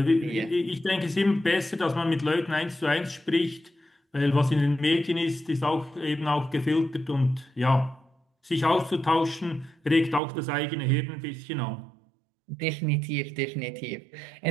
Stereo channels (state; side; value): drops out; left; at 10.2 s